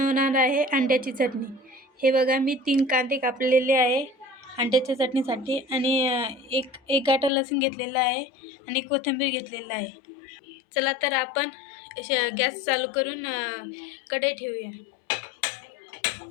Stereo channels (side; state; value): right; drops out; at 7.3 s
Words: आहे अंड्याची चटणी। हे बघा, मी 3 कांदे कापलेले आहे अंड्याच्या चटणीसाठी आणि एक गाठा लसूण घेतलेला आहे आणि कोथिंबीर घेतलेला आहे। चला तर आपण गॅस चालू करून कढई ठेवूया।